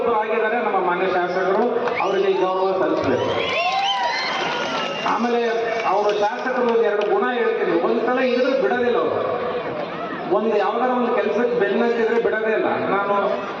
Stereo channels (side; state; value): both; identical; correlation 1.00